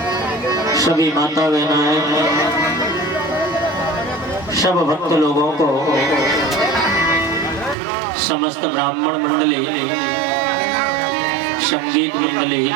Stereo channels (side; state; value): left; drops out; at 7.8 s